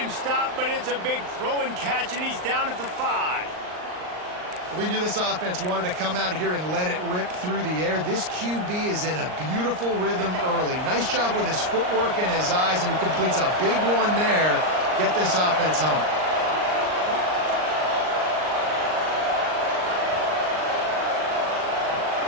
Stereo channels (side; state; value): left; late; 39 ms